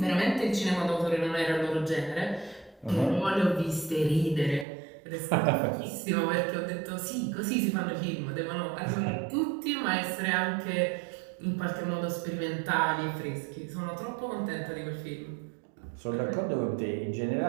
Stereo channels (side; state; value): left; drops out; at 4.7 s